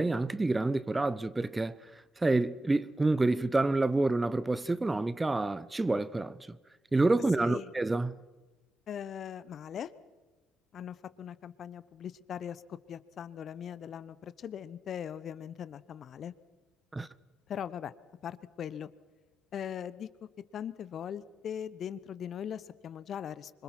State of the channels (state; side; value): normal; both; correlation 0.93